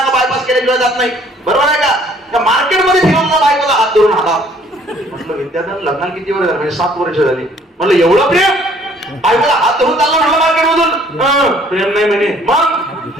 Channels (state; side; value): normal; both; correlation 0.59